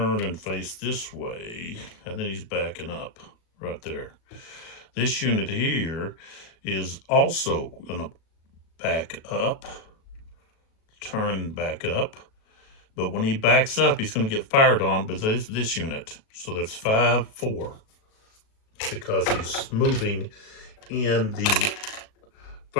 and face this way, and then he's backing up right there. This unit here is also going to back up, turn back up, but when he backs up, he's going to get fired on by this unit. So that's 5-4 because he's moving in the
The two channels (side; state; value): right; late; 37 ms